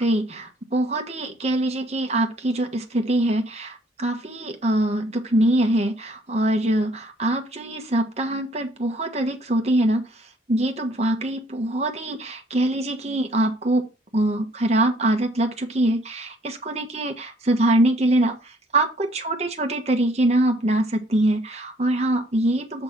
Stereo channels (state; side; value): normal; both; correlation 0.62